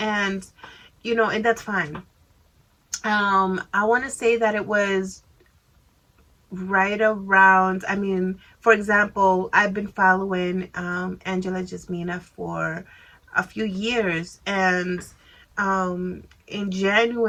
and that's fine. I want to say that it was right around, I mean, for example, I've been following Angela Jasmina for a few years, and um, in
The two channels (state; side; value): identical; both; correlation 1.00